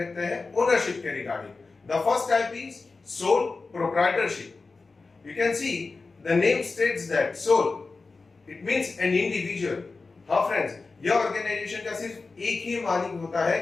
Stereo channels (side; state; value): right; quieter; 4.0 dB